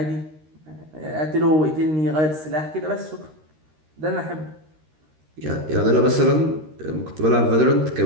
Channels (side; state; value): left; late; 13 ms